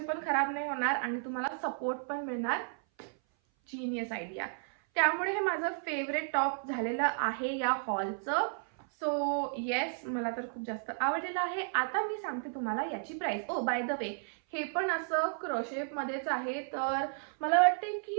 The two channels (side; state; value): left; silent; 56 dB below the other